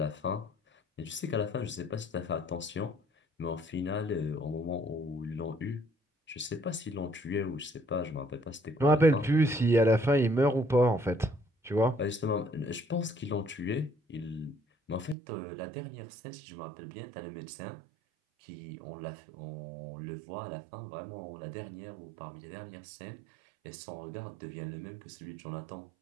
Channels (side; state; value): left; drops out; at 15.2 s